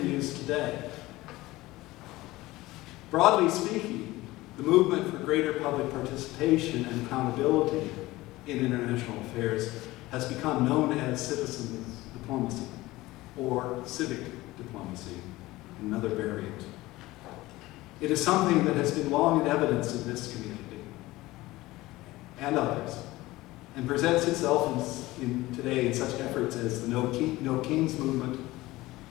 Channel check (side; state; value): right; quieter; 18.7 dB